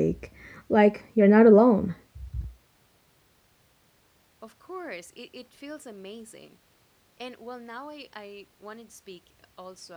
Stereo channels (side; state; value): both; identical; correlation 1.00